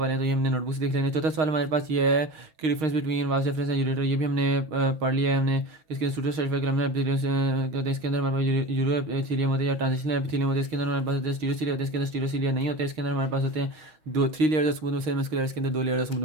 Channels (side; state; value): left; late; 6.4 ms